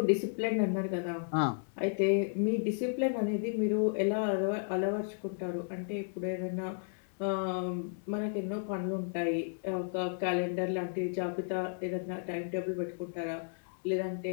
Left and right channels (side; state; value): right; silent; digital silence